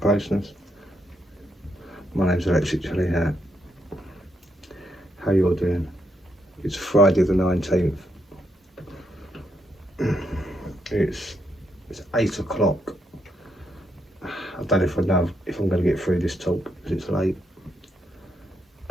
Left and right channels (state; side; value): normal; both; correlation 0.79